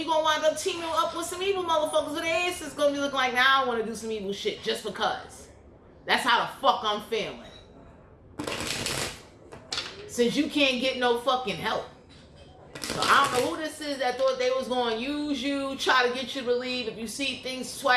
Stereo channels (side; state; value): both; identical; correlation 1.00